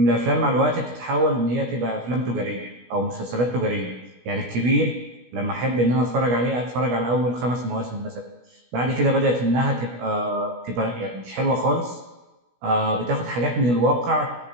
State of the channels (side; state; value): left; late; 16 ms